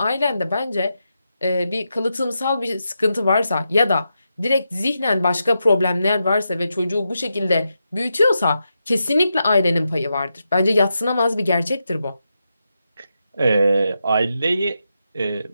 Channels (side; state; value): both; inverted; correlation -0.86